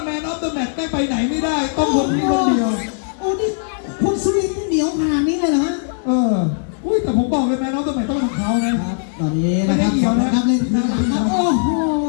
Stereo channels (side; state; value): right; silent; digital silence